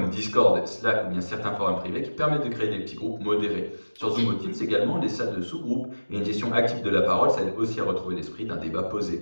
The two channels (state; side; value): inverted; both; correlation -1.00